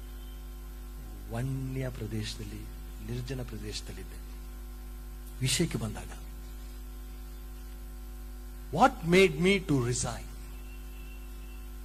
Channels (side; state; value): both; identical; correlation 1.00